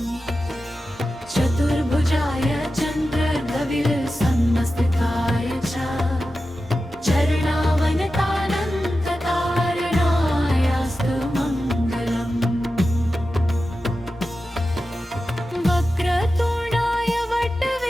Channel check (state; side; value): normal; both; correlation 0.92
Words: चतुर्भुजाय चन्द्रगविलसन्मस्तिकाय च चरणावनतानन्तकारणायास्तु मङ्गलम्। वक्रतुण्डाय